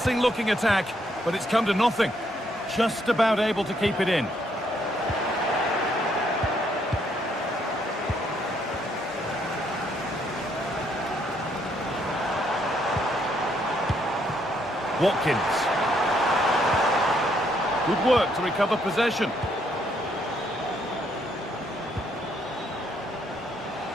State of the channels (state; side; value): normal; both; correlation 0.71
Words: looking attack, but it's come to nothing. Just about able to keep it in. Watkins. Good work to recover possession.